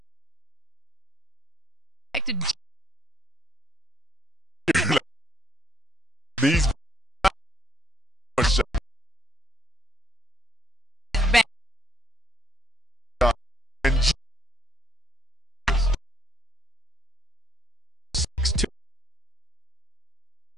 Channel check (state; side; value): normal; both; correlation 0.67